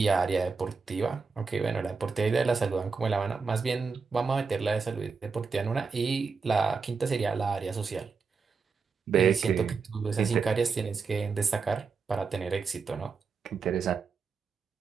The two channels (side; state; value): left; quieter; 5.0 dB